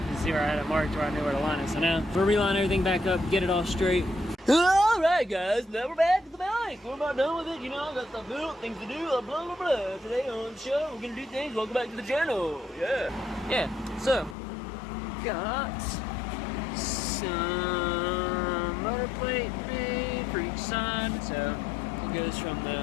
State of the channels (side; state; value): right; drops out; at 14.4 s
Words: and see where I had it marked, where I knew where to line it. So now we'll reline everything back up, get it all straight. Alright guys, now we're back at the bike. We're about done with it, you know, I got stuff built, things to do, blah blah blah. Today on the show, we're gonna do things. Welcome back to the channel. Yeah, so got some motor plate made for each side. So it goes from